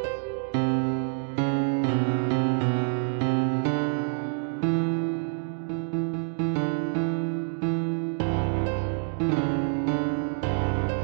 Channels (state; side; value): silent; left; digital silence